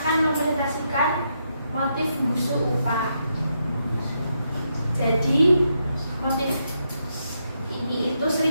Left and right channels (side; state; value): both; inverted; correlation -0.81